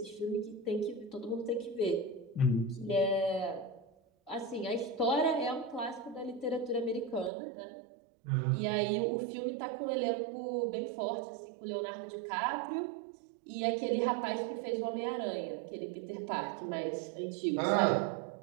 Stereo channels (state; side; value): drops out; left; at 7.3 s